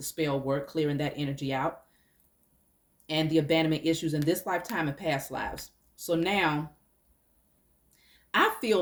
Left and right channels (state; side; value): identical; both; correlation 1.00